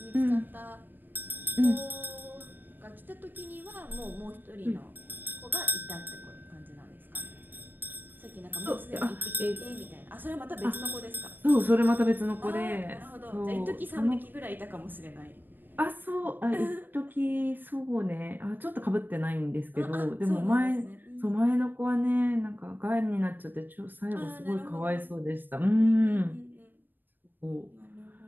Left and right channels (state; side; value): late; left; 0.092 ms